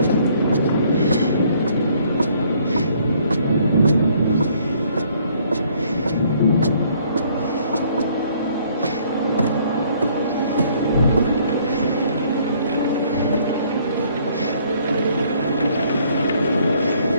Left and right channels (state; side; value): inverted; both; correlation -0.63